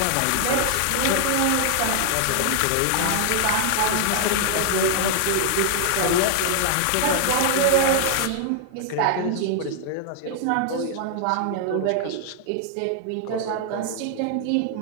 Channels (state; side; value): different; both; correlation 0.00